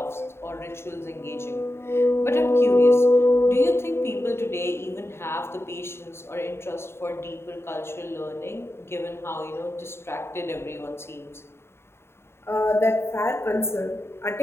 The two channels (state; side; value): late; right; 0.12 ms